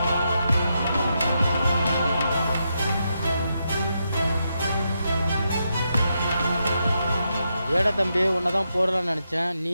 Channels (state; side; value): inverted; both; correlation -0.83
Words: ஏடா தம்பி உன்னை தான் போடலான்னு நினச்சேன்,